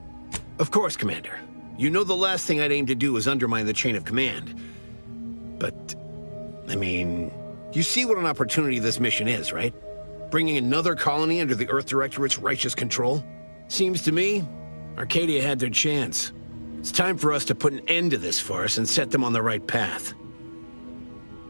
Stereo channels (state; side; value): inverted; both; correlation -1.00